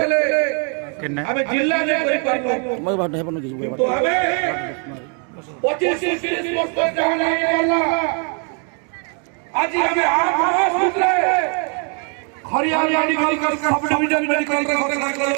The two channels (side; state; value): left; quieter; 39.9 dB